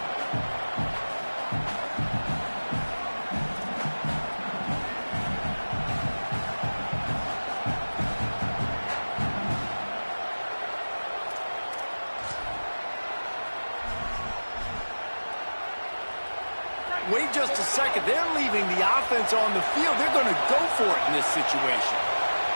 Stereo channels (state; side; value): inverted; both; correlation -1.00